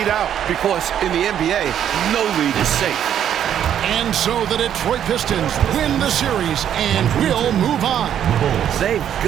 out. Because in the NBA, no lead is safe. And so the Detroit Pistons win the series and will move on. They've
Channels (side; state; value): left; quieter; 9.8 dB